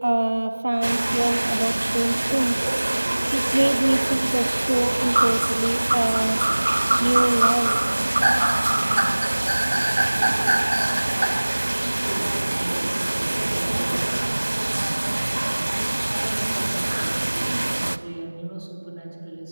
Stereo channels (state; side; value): inverted; both; correlation -1.00